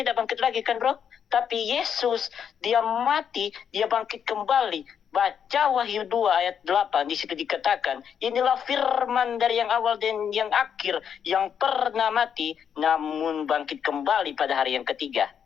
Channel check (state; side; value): quieter; right; 8.0 dB